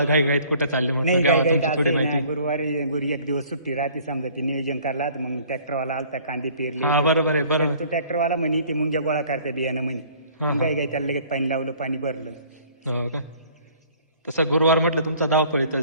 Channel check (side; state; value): both; inverted; correlation -0.54